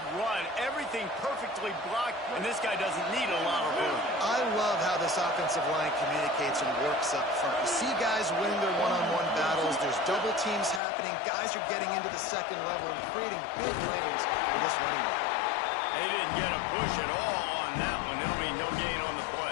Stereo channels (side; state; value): right; drops out; at 10.8 s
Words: run. Everything perfectly blocked, and this guy doesn't need a lot of room. I love how this offensive line communicates and works up front. You see guys winning their one-on-one battles. There's double teams happening. Guys are getting into the second level and creating big lanes for this running back. They didn't get a push at all on that one. There'll be no gain on the